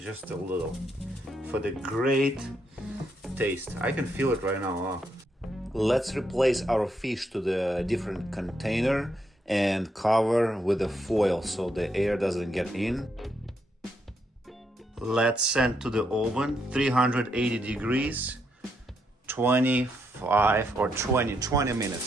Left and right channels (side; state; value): both; normal; correlation 0.78